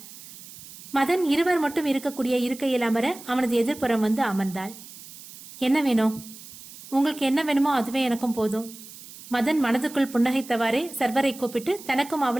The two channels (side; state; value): right; noise; hiss, 16 dB below the sound